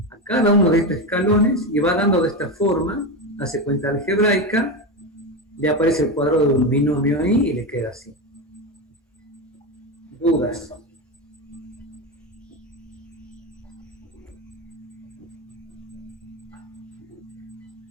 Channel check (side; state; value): both; normal; correlation 0.16